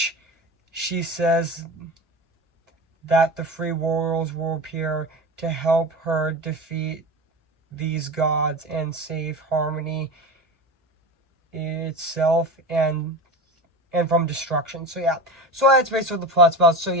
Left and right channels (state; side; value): normal; both; correlation 0.28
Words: she says that the free warriors will appear to help her defeat these gods and save harmony itself and from destruction. So that's basically what the plot's about.